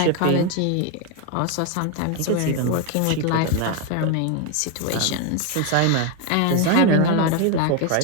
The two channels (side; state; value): both; different; correlation 0.01